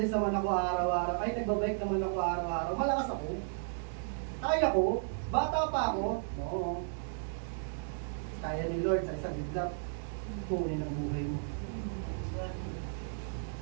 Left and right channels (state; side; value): silent; left; digital silence